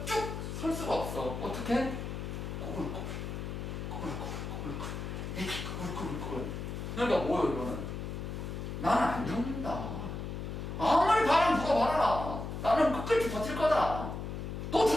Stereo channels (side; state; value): left; noise; hum, 6 dB below the sound